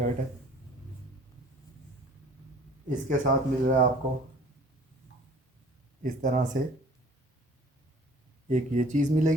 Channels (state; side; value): normal; both; correlation 0.50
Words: है। इसके साथ मिल रहा है आपको इस तरह से एक ये चीज़